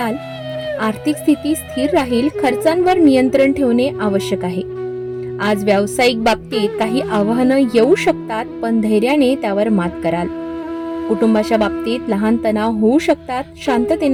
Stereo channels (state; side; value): identical; both; correlation 1.00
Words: आर्थिक स्थिती स्थिर राहील. खर्चांवर नियंत्रण ठेवणे आवश्यक आहे. आज व्यावसायिक बाबतीत काही आव्हानं येऊ शकतात, पण धैर्याने त्यावर मात कराल. कुटुंबाच्या बाबतीत लहान तणाव होऊ शकतात.